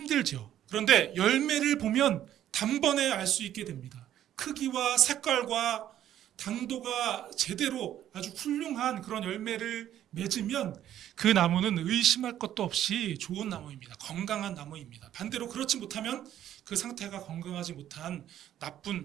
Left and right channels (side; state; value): left; quieter; 11.5 dB